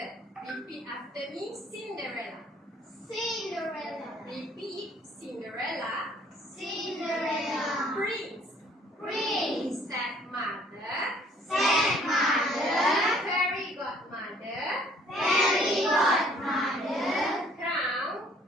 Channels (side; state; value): both; normal; correlation 0.59